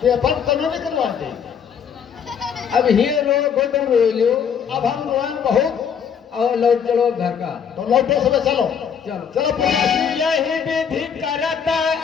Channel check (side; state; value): right; quieter; 7.5 dB